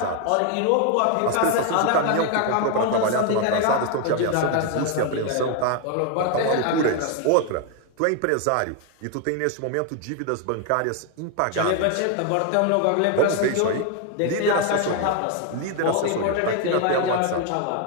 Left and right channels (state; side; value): different; both; correlation 0.01